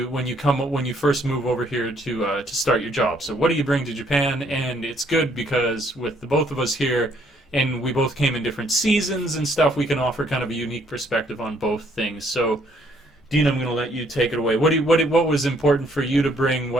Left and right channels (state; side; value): normal; both; correlation 0.67